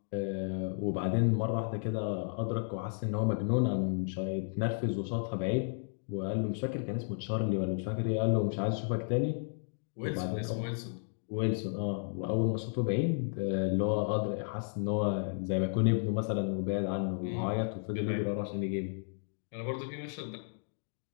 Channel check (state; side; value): silent; right; digital silence